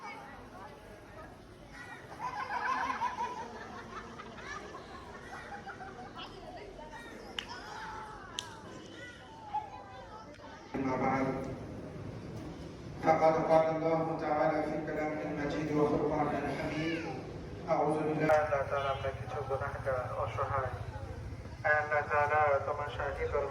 فقد قال الله تعالى في كلامه المجيد وفرقانه الحميد أعوذ بالله আল্লাহ তাআলা আমরা কিছু গুনাহগার অসহায়, আল্লাহ তাআলা তোমার শাহী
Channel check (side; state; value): both; identical; correlation 1.00